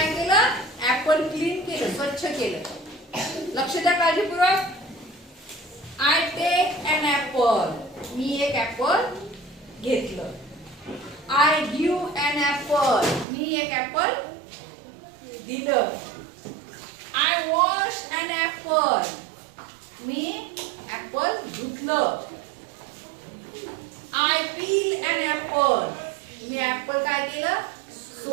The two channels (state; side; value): drops out; left; at 13.2 s